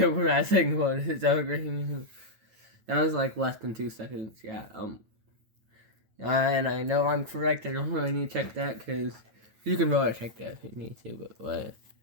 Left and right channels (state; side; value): late; left; 9.2 ms